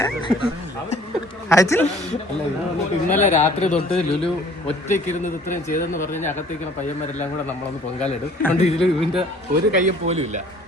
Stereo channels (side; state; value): both; normal; correlation 0.53